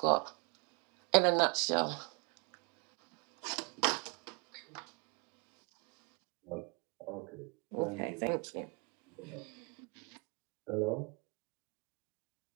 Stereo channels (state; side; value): quieter; left; 33.4 dB